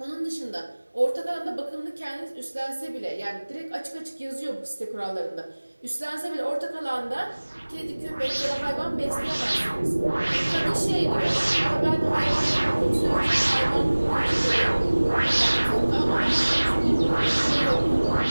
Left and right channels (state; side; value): inverted; both; correlation -1.00